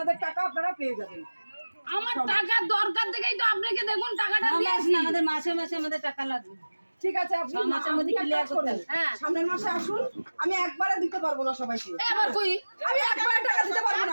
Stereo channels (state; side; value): inverted; both; correlation -1.00